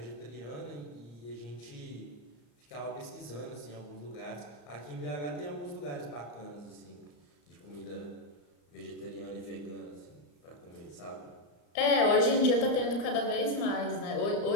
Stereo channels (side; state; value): right; late; 34 ms